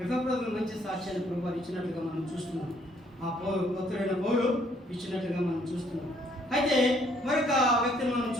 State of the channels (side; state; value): both; normal; correlation 0.66